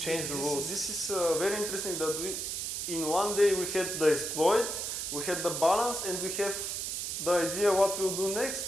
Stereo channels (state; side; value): noise; right; hiss, 3 dB below the sound